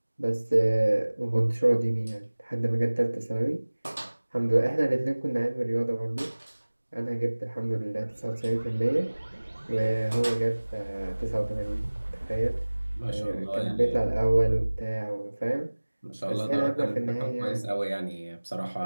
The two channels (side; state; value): both; inverted; correlation -1.00